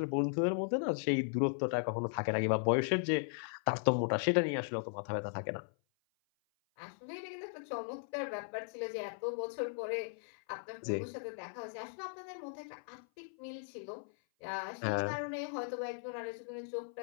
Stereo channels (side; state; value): right; silent; 53 dB below the other